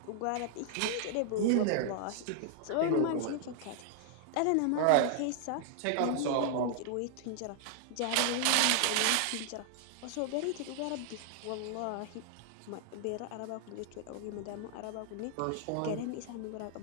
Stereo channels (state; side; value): different; both; correlation 0.00